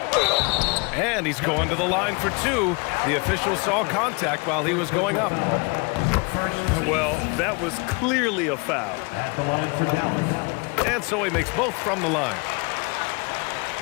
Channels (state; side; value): quieter; right; 30.6 dB